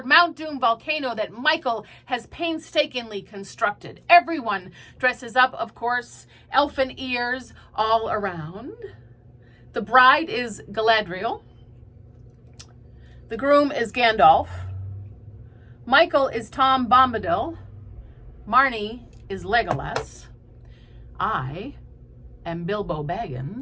Mount Doom volcano that Michael has painstakingly constructed. Everyone dresses up, of course, elfin ears all around. The bride is Galadriel. The groom is Gandalf. Michael is Tom Bombadil. Marnie is Legolas. I am Bilbo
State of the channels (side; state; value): both; identical; correlation 1.00